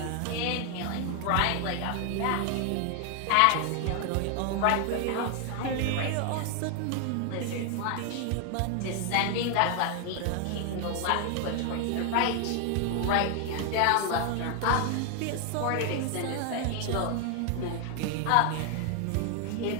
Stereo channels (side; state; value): both; different; correlation 0.00